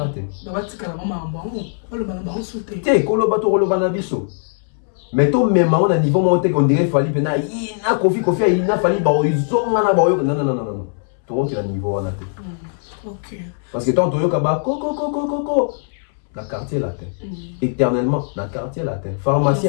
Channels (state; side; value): silent; right; 66 dB below the other